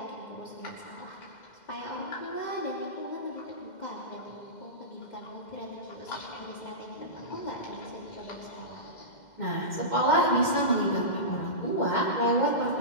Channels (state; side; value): late; right; 2.1 ms